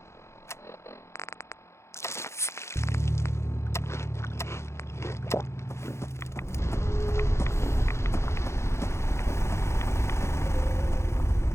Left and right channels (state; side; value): late; right; 0.13 ms